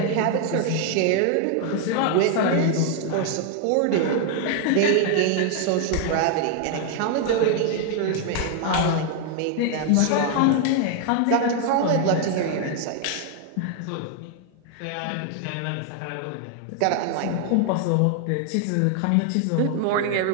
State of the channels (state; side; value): different; both; correlation 0.00